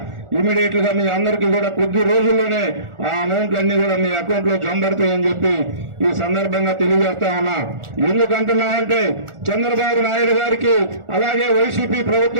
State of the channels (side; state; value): left; late; 1.4 ms